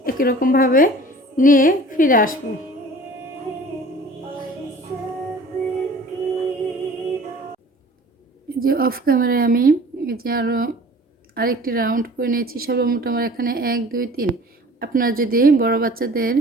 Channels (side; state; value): both; normal; correlation 0.46